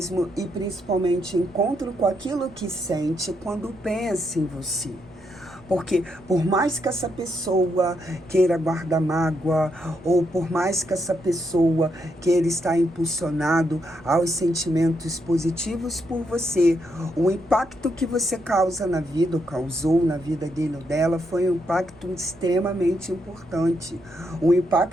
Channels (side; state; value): right; noise; rumble, 27 dB below the sound